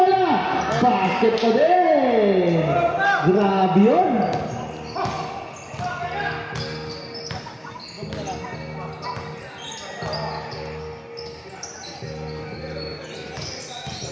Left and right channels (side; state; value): both; identical; correlation 1.00